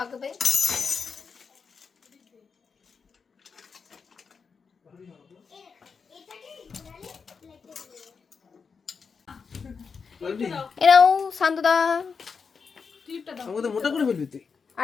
এরাও শান্তদা, আমাকে তো মোটা করে ফেলবি তুই।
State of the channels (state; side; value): quieter; right; 5.5 dB